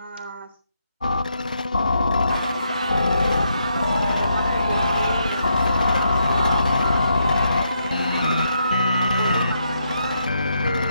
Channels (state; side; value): inverted; both; correlation -0.78